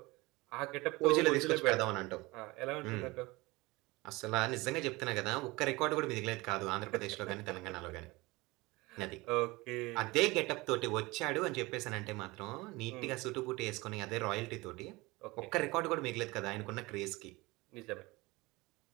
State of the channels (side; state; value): left; quieter; 22.5 dB